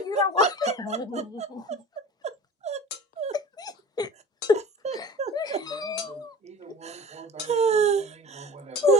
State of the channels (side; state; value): both; normal; correlation 0.39